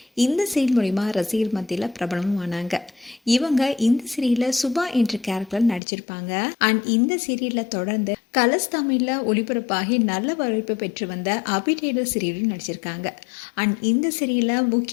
இந்த சீரியல் மூலிமா ரசிகர் மத்தியில் பிரபலமும் ஆனாங்க. இவங்க இந்த சீரியலில் சுபா என்ற கேரக்டர் நடிச்சிருப்பாங்க. அண்ட் இந்த சீரியலில் தொடர்ந்து கலர்ஸ் தமிழில் ஒளிபரப்பாகி நல்ல வரவேற்பு பெற்று வந்த அபிடேடர் சீரியலில் நடிச்சிருக்காங்க. அண்ட் இந்த சீரியலில்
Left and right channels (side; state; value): right; drops out; at 5.8 s